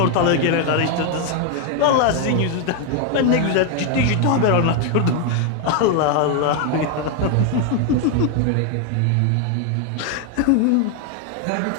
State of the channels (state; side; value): different; both; correlation 0.01